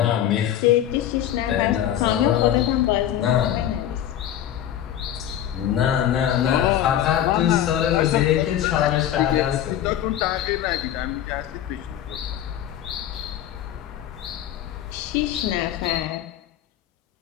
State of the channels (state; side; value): quieter; right; 11.2 dB